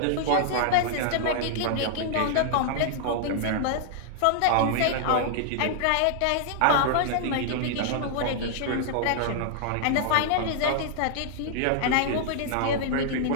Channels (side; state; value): both; different; correlation -0.01